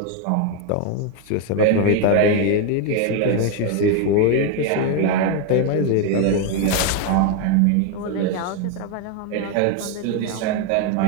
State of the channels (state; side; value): different; both; correlation 0.01